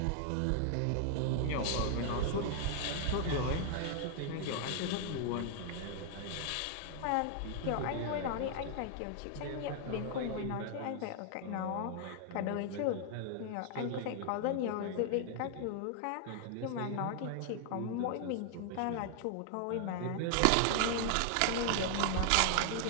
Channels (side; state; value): both; different; correlation 0.00